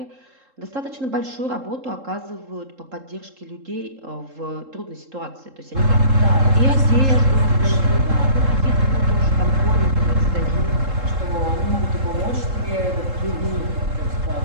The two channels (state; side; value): late; left; 3.7 ms